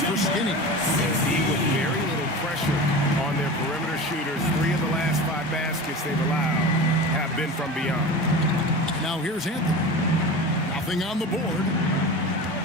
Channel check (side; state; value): both; normal; correlation 0.31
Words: for Skinny. With very little pressure on their perimeter shooters, 3 of the last 5 baskets they've allowed have been from beyond. Now here's Anthony. Nothing on the board.